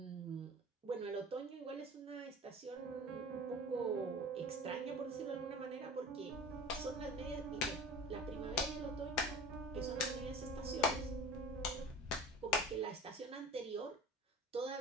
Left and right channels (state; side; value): normal; both; correlation 0.38